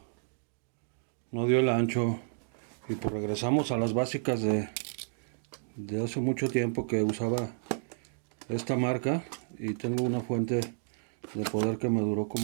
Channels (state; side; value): silent; left; digital silence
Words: dio el ancho. Y pues regresamos a las básicas de hace mucho tiempo que usaba esta marca, y tengo una fuente de poder que me duró